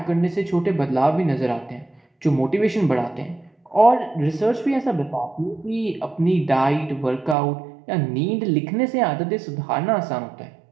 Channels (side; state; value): left; drops out; at 7.4 s